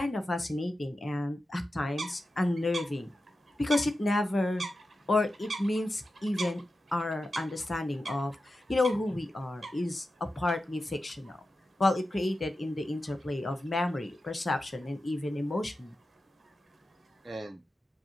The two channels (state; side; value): normal; both; correlation 0.92